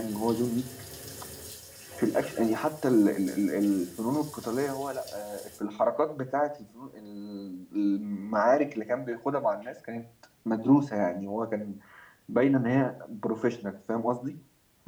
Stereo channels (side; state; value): both; identical; correlation 1.00